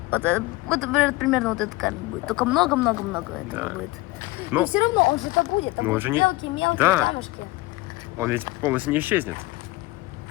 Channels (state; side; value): quieter; right; 20.7 dB